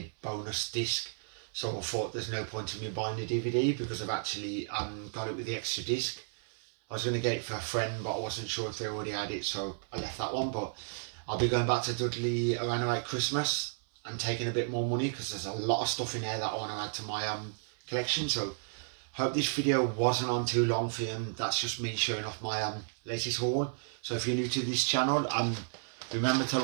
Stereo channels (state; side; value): silent; left; 56 dB below the other